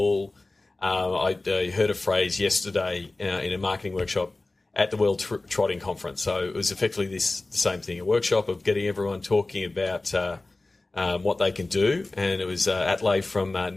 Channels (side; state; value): right; quieter; 3.0 dB